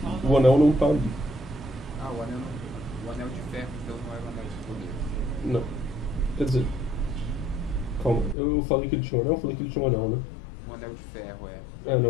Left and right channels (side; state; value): right; drops out; at 8.3 s